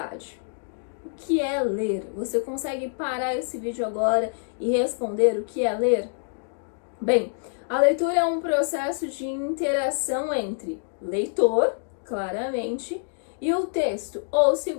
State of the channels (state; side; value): silent; right; digital silence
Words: O que é ler? Você consegue parar esse vídeo agora e responder o que é ler? Bem, a leitura é um processo de interação entre leitor, claramente, e o texto, ou se